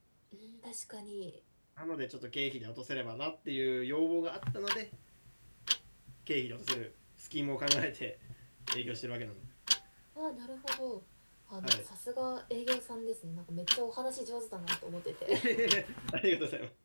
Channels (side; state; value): both; inverted; correlation -1.00